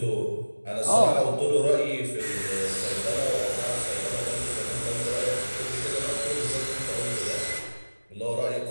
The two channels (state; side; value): inverted; both; correlation -1.00